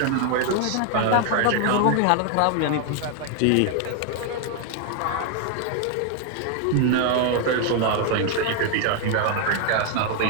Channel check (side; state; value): both; different; correlation 0.00